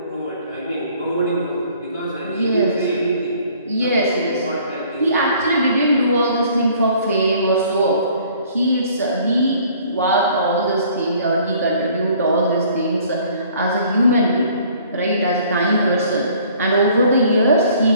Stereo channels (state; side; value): inverted; both; correlation -0.56